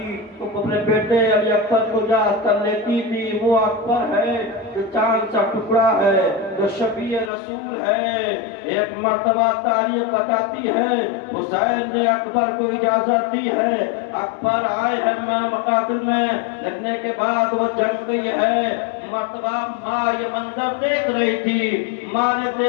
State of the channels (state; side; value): drops out; right; at 7.3 s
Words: تو اپنے بیٹے علی اکبر کو یاد کر لیتی تھی۔ وہ اکبر ہے جو چاند سا ٹکڑا ہے، جو شفیع رسول ہے۔ ایک مرتبہ تاریخ بتاتی ہے حسین نے اکبر کو اجازت دی ہے، اکبر آئے ہیں مقاتل میں، لڑنے کے بعد وہ جنگ گئی ہے۔ مرتبہ ماں یہ منظر دیکھ رہی تھی، ماں نے